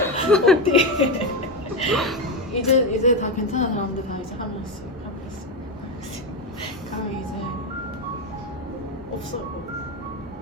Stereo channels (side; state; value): both; normal; correlation 0.12